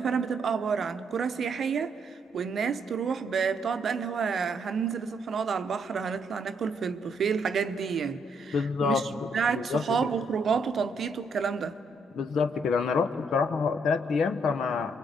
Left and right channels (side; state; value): both; normal; correlation 0.73